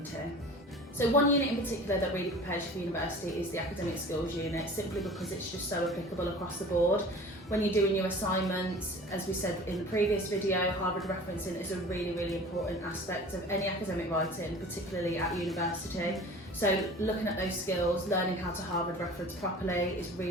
So one unit in particular that really prepares you for university is the academic skills unit, simply because it's just so applicable across the board. When you're doing your assignments, as we said in the previous video, Harvard referencing is a really important aspect of any academic writing, particularly at university. So looking at those skills, learning how to Harvard reference properly is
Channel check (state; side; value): normal; both; correlation 0.42